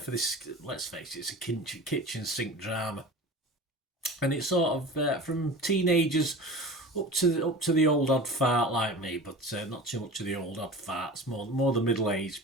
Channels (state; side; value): normal; both; correlation 0.35